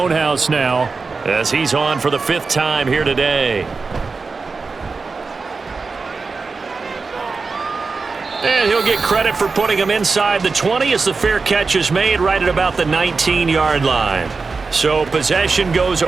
now, as he's on for the 5th time here today. And he'll get credit for putting him inside the 20 as the fair catch is made right at about the 19-yard line. So possession goes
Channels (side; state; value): left; quieter; 4.4 dB